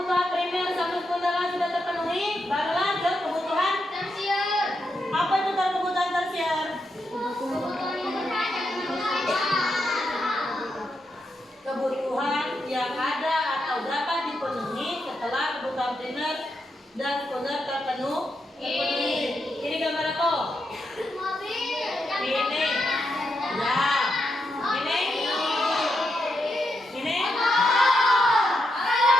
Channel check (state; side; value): normal; both; correlation 0.83